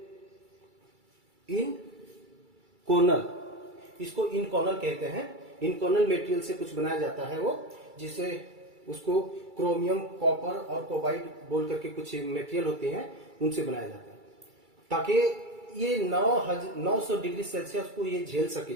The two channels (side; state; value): left; late; 2.3 ms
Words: इनकोनल, इसको इनकोनल कहते हैं। इनकोनल मटेरियल से कुछ बनाया जाता है वो, जिसे उसको क्रोमियम, कॉपर और कोबाल्ट बोल करके कुछ मटेरियल होते हैं उनसे बनाया जाता है ताकि ये 900 डिग्री सेल्सियस को ये झेल सके